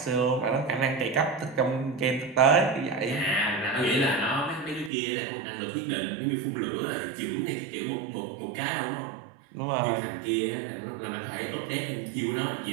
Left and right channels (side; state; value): left; drops out; at 4.9 s